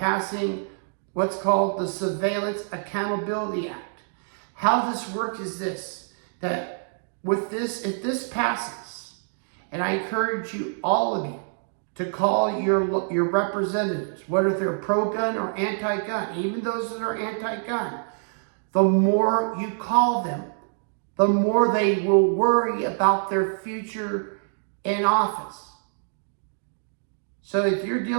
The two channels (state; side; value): silent; left; digital silence